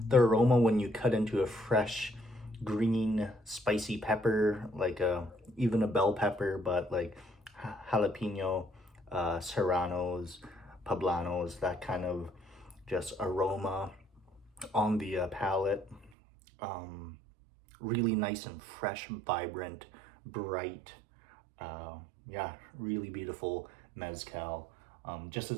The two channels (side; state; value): left; drops out; at 16.1 s